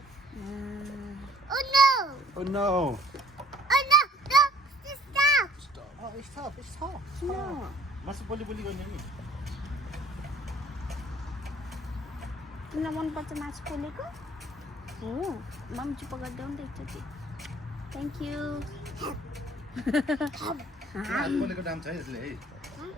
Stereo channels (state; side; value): normal; both; correlation 0.56